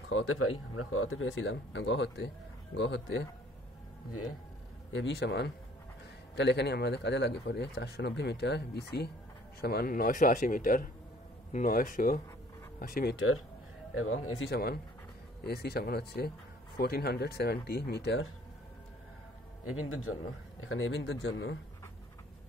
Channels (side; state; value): both; normal; correlation 0.56